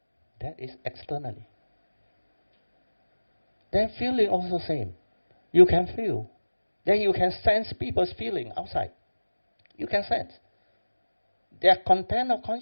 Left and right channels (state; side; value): inverted; both; correlation -1.00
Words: That is externally. Then feeling also same. You can feel. Then you can sense people's feeling outside. You can sense. Their content of